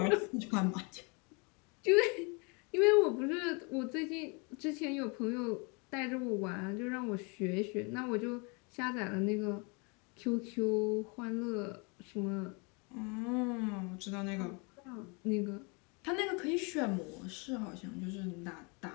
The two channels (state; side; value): quieter; right; 31.9 dB